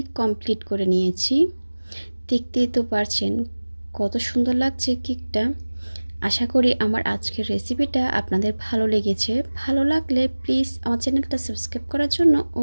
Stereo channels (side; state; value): both; inverted; correlation -1.00